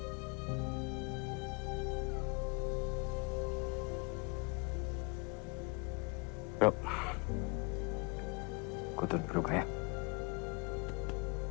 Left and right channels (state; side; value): quieter; right; 30.0 dB